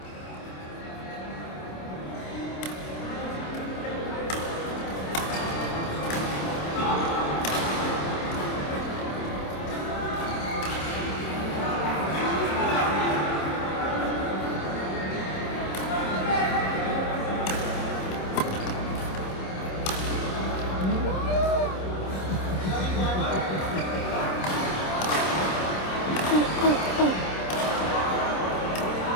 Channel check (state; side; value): late; right; 27 ms